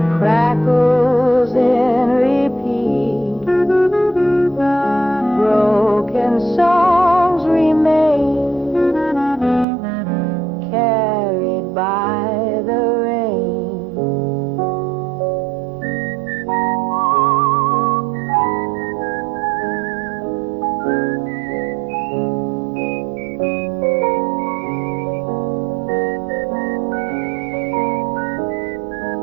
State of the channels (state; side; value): drops out; left; at 9.7 s